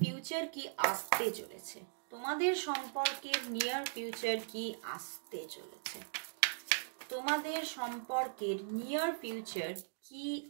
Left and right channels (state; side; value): silent; left; digital silence